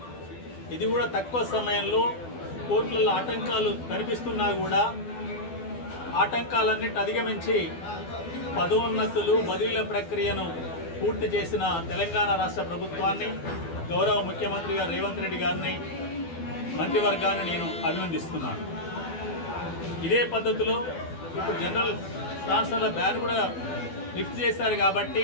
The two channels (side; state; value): right; late; 12 ms